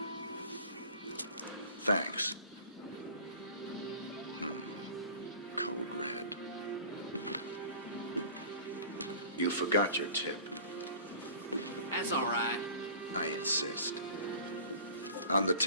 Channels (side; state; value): both; inverted; correlation -0.42